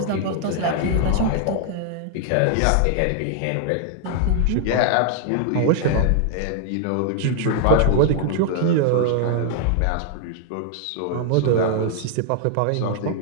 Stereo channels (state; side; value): different; both; correlation 0.00